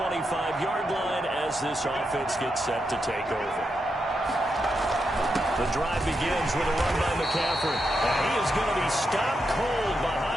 line as this offense gets set to take over. The drive begins with a run by McCaffrey. And he is going to be stopped cold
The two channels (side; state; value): both; normal; correlation 0.84